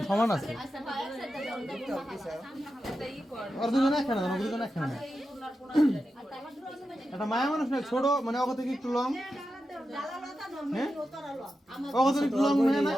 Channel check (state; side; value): normal; both; correlation 0.90